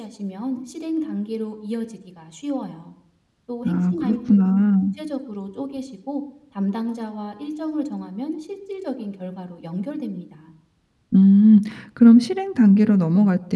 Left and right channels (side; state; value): both; identical; correlation 1.00